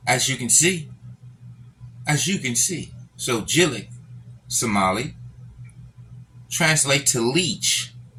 As you can see. So Jileec, Somali, translate to leech.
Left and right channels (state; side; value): identical; both; correlation 1.00